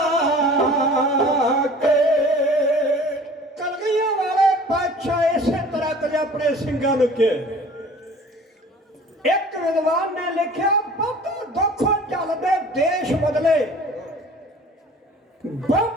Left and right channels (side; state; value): both; normal; correlation 0.46